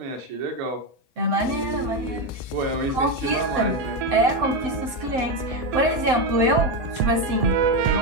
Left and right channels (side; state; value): left; late; 7.8 ms